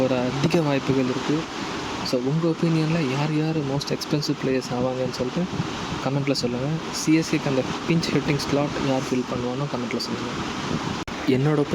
அதிக வாய்ப்புகள் இருக்குது. ஸோ உங்கள் ஒப்பீனியனில் யார் யார் மோஸ்ட் எக்ஸ்பென்சிவ் பிளேயர்ஸ் ஆவாங்கன்னு சொல்லிட்டு கமெண்ட்டில் சொல்லுங்கள். சிஎஸ்கேக்கு அந்த பிஞ்ச் ஹிட்டிங் ஸ்லாட் யார் ஃபில் பண்ணுவானோ கமெண்ட்டில் சொல்லுங்கள். என்னோடய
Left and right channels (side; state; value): both; identical; correlation 1.00